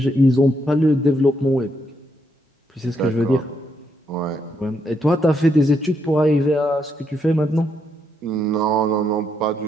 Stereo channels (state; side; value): normal; both; correlation 0.77